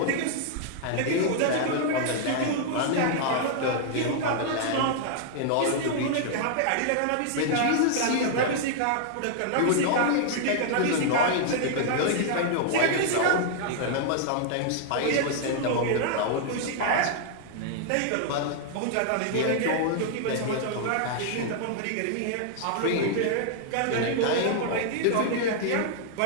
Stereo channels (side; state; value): both; different; correlation -0.01